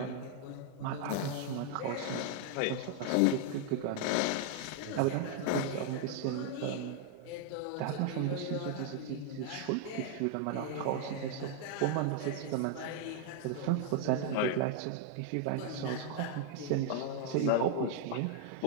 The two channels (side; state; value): both; different; correlation 0.00